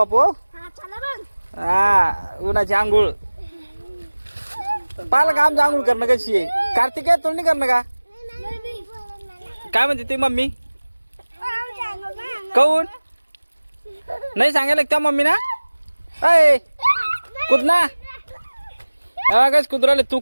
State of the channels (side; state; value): both; inverted; correlation -1.00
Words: हा उन्हाची आंघोळ पाहिलं का आमची आंघोळ करणं कशी आहे. कार्तिक आहे तुला नाही करणं का काय म्हणते ती मम्मी. काऊन नाही सांगायला त्या मम्मी ना. अय कुद ना कस कुदराले तू